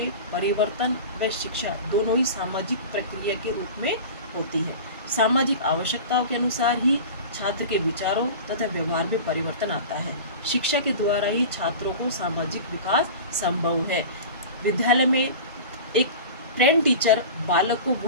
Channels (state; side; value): inverted; both; correlation -0.34